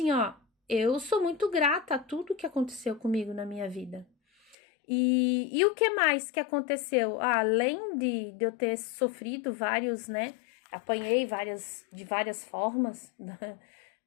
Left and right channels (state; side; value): drops out; right; at 4.5 s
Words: ó, eu sou muito grata a tudo que aconteceu comigo na minha vida. E o que mais que aconteceu? Além de eu ter sofrido vários, né? Apanhei de várias formas